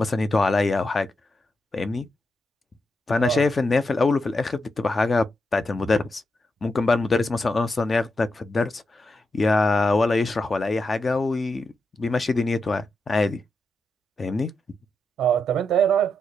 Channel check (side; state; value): both; normal; correlation 0.85